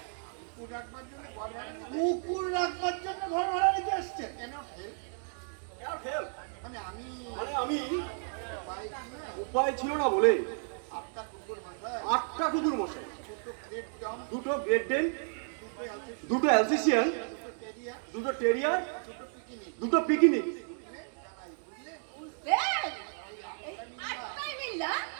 কুকুর রাখবার জন্য ঘর ভাড়া নিতে আসছে। হেল্প মানে আমি মানে আমি পাই কি না উপায় ছিল না বলে 8টা কুকুর মাথায় 8টা কুকুর মশাই, 2টো গ্রেট ডম, 2টো গ্রেট ডেন, 2টো আছে, 2টো অ্যালসেশিয়ান, 2টো টেরিয়া, 2টো টেরিয়ার, 2টো পিকিনিক, 2টো পিকনিক। জানাই বুঝলে? বুঝলেন? এই আটটাই মিল্লা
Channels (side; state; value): left; silent; 56 dB below the other